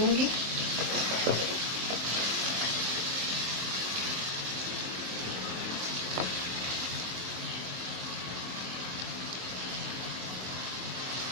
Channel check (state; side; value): late; left; 23 ms